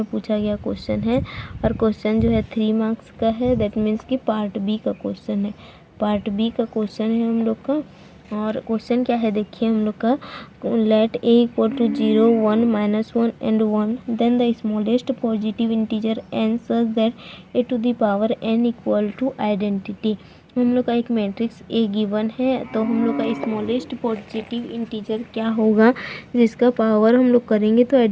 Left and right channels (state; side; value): identical; both; correlation 1.00